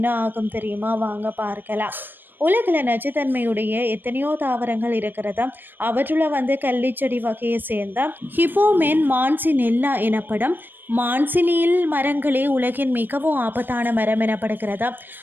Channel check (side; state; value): left; late; 0.093 ms